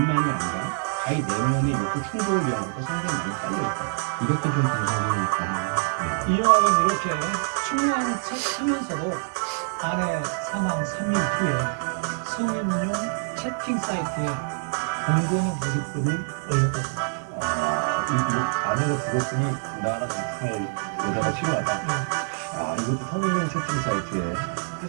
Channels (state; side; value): silent; left; 61 dB below the other